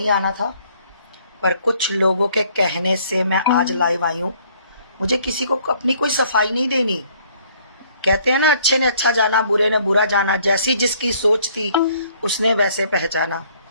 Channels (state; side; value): inverted; both; correlation -0.61